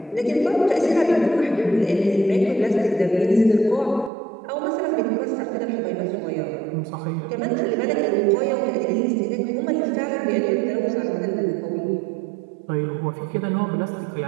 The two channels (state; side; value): drops out; left; at 4.1 s